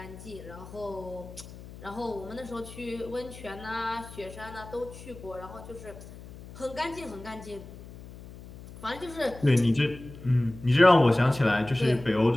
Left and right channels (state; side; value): noise; left; hum, 16 dB below the sound